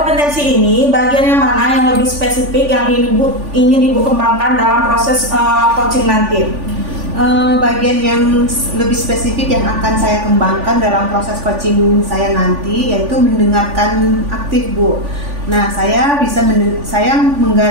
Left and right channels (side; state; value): left; late; 3.5 ms